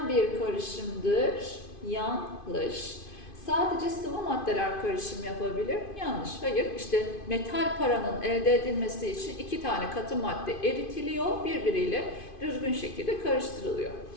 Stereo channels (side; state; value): right; late; 2.5 ms